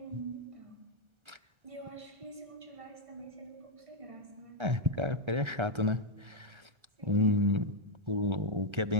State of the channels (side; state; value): left; late; 1.3 ms